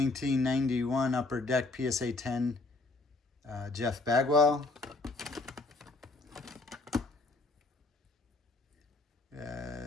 Upper Deck PSA 10, Jeff Bagwell.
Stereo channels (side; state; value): right; quieter; 3.4 dB